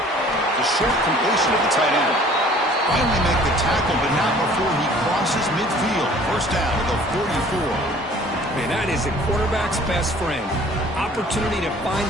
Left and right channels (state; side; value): normal; both; correlation 0.52